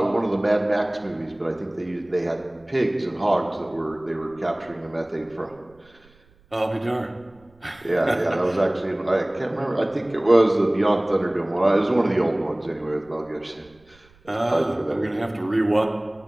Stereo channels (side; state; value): right; noise; rumble, 30 dB below the sound